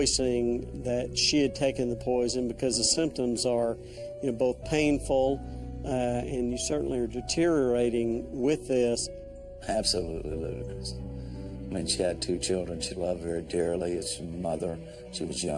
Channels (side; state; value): both; identical; correlation 1.00